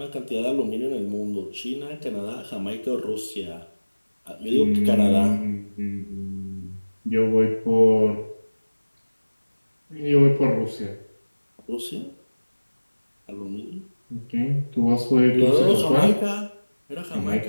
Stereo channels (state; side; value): inverted; both; correlation -1.00